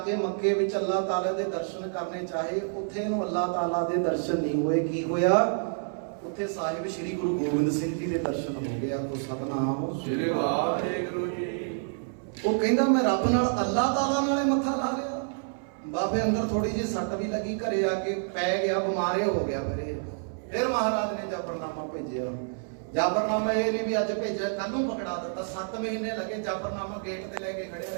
ਕੇ ਮੱਕੇ ਵਿੱਚ ਅੱਲਾਹ ਤਾਲਾ ਦੇ ਦਰਸ਼ਨ ਕਰਨੇ ਚਾਹੇ ਉੱਥੇ ਇਹਨੂੰ ਅੱਲਾਹ ਤਾਲਾ ਦੇ ਦਰਸ਼ਨ ਨਹੀਂ ਹੋਏ। ਕੀ ਹੋਇਆ? ਉੱਥੇ ਸਾਹਿਬ ਸ਼੍ਰੀ ਗੁਰੂ ਗੋਬਿੰਦ ਸਿੰਘ ਜੀ ਦੇ ਦਰਸ਼ਨ ਹੋ ਗਿਆ। ਕੋ ਸਤਨਾਮ ਸ੍ਰੀ ਵਾਹਿਗੁਰੂ ਜੀ। ਉਹ ਕਹਿੰਦਾ ਮੈਂ ਰੱਬ ਨਾਲ ਅੱਲਾਹ ਤਾਲਾ ਨਾਲੇ ਮੱਥਾ ਲਾ ਲਿਆ। ਬਾਬੇ ਅੰਦਰ ਥੋੜੀ ਜਿਹੀ ਸੱਟ ਵੀ ਲੱਗੀ ਘਰੇ ਆ ਕੇ ਪੈ ਗਿਆ ਬਿਮਾਰੇ ਹੋ ਗਿਆ। ਫਿਰ ਮਹਾਰਾਜ ਨੇ ਜਾਫਰਨਾਮਾ ਭੇਜਿਆ। ਜਾਫਰਨਾਮਾ ਇਹ ਨਹੀਂ ਵੀ ਅੱਜ ਭੇਜਿਆ ਕੱਲ ਨੂੰ ਪਕੜਾ ਦਿੱਤਾ। 7 ਮਹੀਨੇ ਲੱਗੇ ਜਾਫਰਨਾਮਾ ਗੇਟ ਤੇ ਲੈ ਕੇ ਖੜਿਆ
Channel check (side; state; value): left; silent; 57 dB below the other